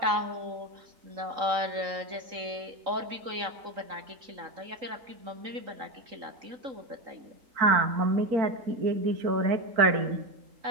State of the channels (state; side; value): late; left; 3.8 ms